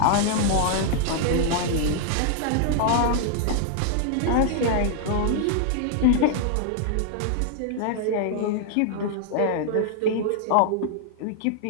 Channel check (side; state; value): both; different; correlation -0.01